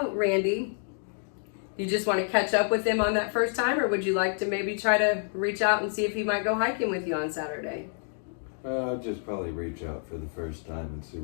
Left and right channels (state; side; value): silent; right; 59 dB below the other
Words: Randy, you just want to catch up with him on that first time, or would you like to maybe try to reach out and see if he might go hiking with you on Saturday? I'll just probably reach out for the first time and see